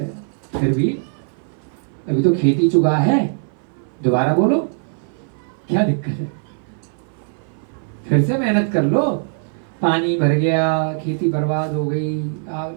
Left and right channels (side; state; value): left; silent; 58 dB below the other